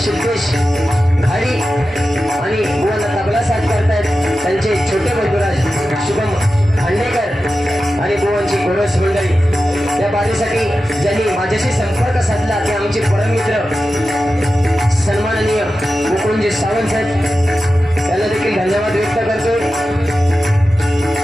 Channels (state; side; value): normal; both; correlation 0.93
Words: सिद्धेश घाडी आणि बुवांना तबला साथ करतात त्यांचे छोटे बंधुराज शुभम खांडेकर आणि बुवांची गोरस मंडळी। या बारीसाठी ज्यांनी माझ्याशी संपर्क साधला ते आमचे परम मित्र सन्माननीय मुकुंदजी सावंत साहेब त्यांना देखील धन्यवाद व्यक्त करतोय।